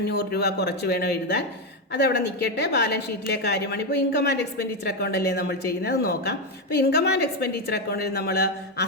രൂപ കുറച്ച് വേണം എഴുതാൻ. അതവിടെ നിൽക്കട്ടെ. ബാലൻസ് ഷീറ്റിലെ കാര്യമാണ്. ഇപ്പോൾ ഇൻകം ആൻഡ് എക്സ്പെൻഡിച്ചർ അക്കൗണ്ട് അല്ലേ നമ്മൾ ചെയ്യുന്നത്, നോക്കാം. അപ്പോൾ ഇൻകം ആൻഡ് എക്സ്പെൻഡിച്ചർ അക്കൗണ്ടിൽ നമ്മൾ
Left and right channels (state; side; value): normal; both; correlation 0.08